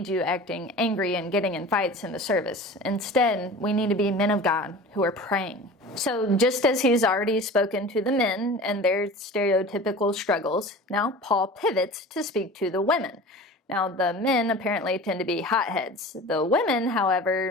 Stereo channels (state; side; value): normal; both; correlation 0.37